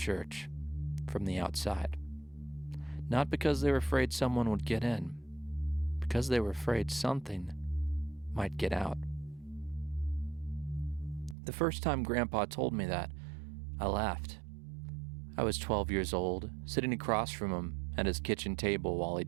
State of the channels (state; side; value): drops out; left; at 11.4 s